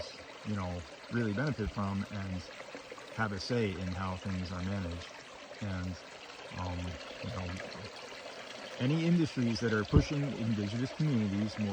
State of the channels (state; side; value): identical; both; correlation 1.00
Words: really benefit from and have a say in how things are managed. And, any industries that are pushing indigenous communities